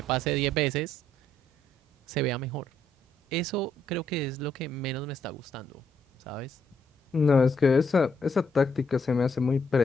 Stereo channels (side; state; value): both; normal; correlation 0.73